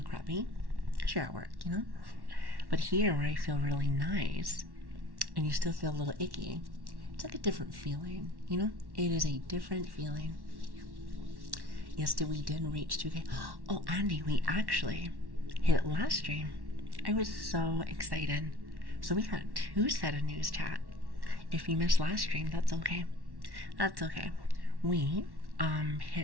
crappy, because you're at work, But here, where I feel really nice, and you still feel a little icky, it's like a different feeling, It is a different feeling. Yes, we did reach 2K. Oh, Andy, we actually hit it last stream. I was so excited. So we got 2 set of news chat. If you missed last stream, that's okay. That's okay. We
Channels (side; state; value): left; late; 1.1 ms